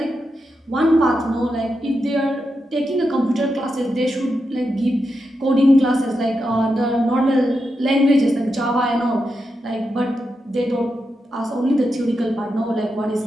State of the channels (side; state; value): both; normal; correlation 0.87